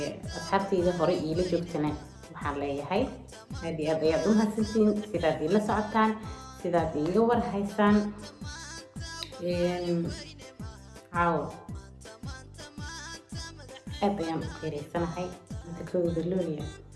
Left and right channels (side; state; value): both; identical; correlation 1.00